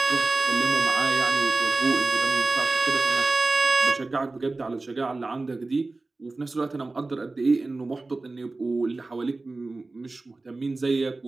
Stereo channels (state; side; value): quieter; left; 3.4 dB